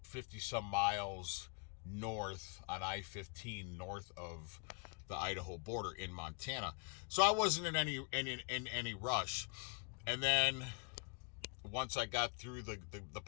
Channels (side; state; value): right; quieter; 37.8 dB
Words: 50 some miles north on I-15, north of the Idaho border in Montana. So I wasn't in any rush. And then once I got through the